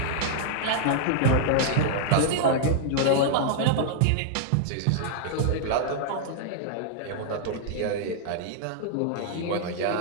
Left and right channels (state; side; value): different; both; correlation -0.01